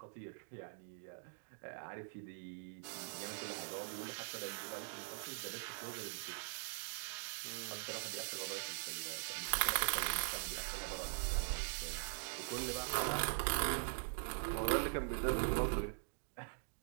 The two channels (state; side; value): silent; left; digital silence